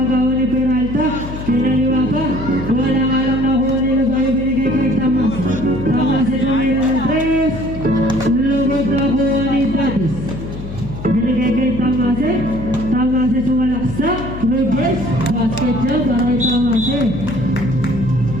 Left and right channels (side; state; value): left; noise; hum, 10 dB below the sound